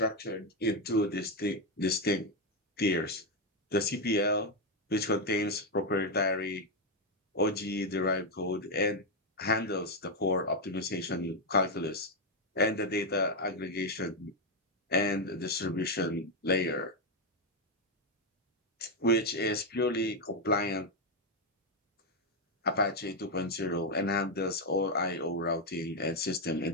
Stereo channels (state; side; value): normal; both; correlation 0.04